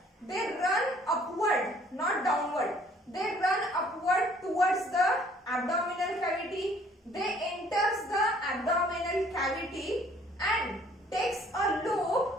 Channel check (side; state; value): both; normal; correlation 0.59